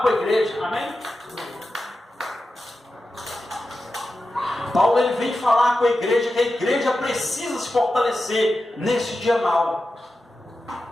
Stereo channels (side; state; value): both; normal; correlation 0.92